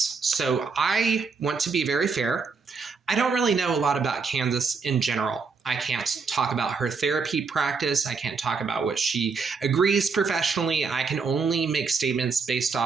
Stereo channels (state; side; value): quieter; left; 5.0 dB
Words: So I want to be very fair. I don't really know a lot about Candace in general. I can't talk about her therapy practice. I can't talk about what she agrees professionally. I can only make statements based